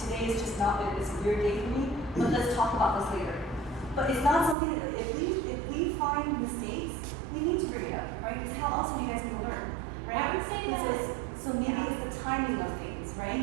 is just not, it's a weird day for me, but let's talk about this later. But it's not something that, if we find mistakes, we need to bring it up, right? Because how else are you guys gonna learn, right? I would say that- So maybe it's the timing of things,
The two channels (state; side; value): drops out; left; at 4.5 s